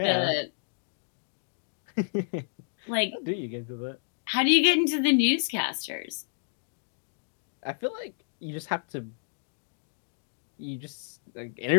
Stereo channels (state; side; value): silent; right; digital silence